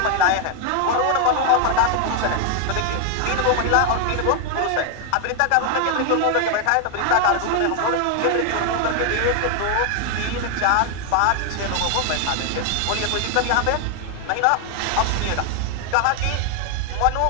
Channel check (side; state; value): both; different; correlation 0.00